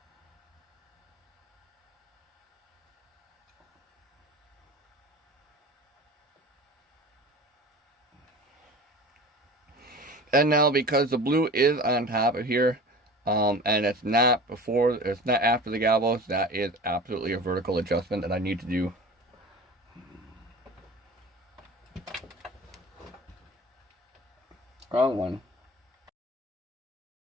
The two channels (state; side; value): normal; both; correlation 0.37